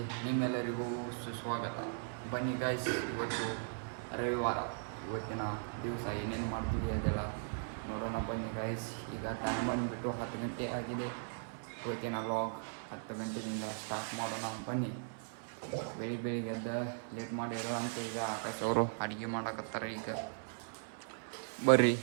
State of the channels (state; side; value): silent; left; 52 dB below the other